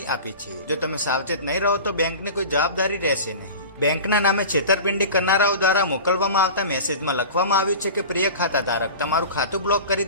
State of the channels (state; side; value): inverted; both; correlation -0.35